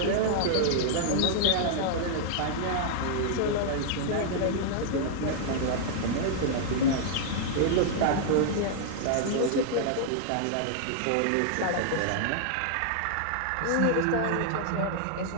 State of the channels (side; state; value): both; different; correlation -0.01